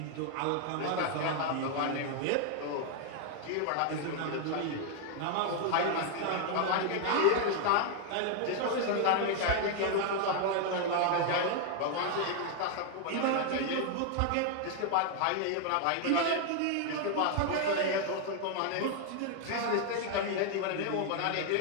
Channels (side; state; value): both; different; correlation 0.00